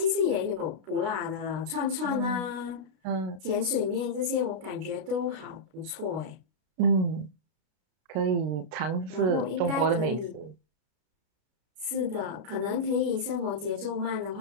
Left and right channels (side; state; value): left; late; 33 ms